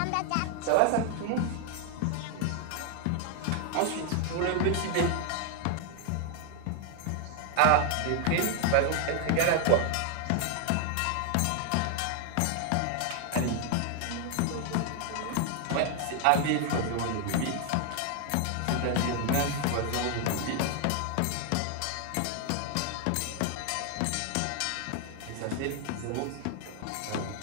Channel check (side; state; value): both; different; correlation 0.00